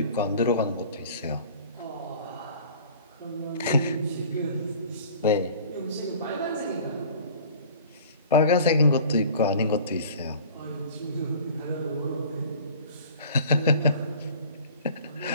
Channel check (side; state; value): both; inverted; correlation -0.46